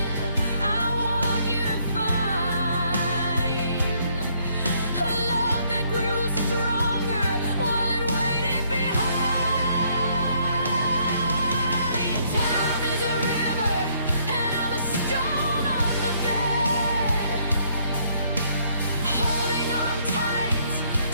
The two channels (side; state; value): both; inverted; correlation -0.67